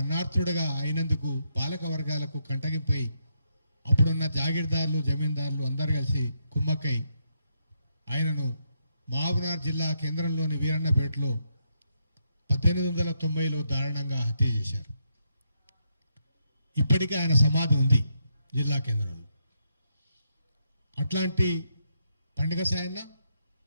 అన్నార్థుడుగా అయినందుకు పాలక వర్గాలకు కంటగింపై అప్పుడున్న జాగీర్దారులు, జమీందారులు అందరు కలిసి కుమ్మక్కై ఆయనను మహబూబ్నగర్ జిల్లా కేంద్రంలోని వీరన్నపేటలో 1890లో దారుణంగా హత్య చేశారు. ఇప్పటికీ ఆయన సమాధి ఉంది జిల్లా కేంద్రంలో. అట్లాంటి పండుగ సాయన్న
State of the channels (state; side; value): inverted; both; correlation -0.79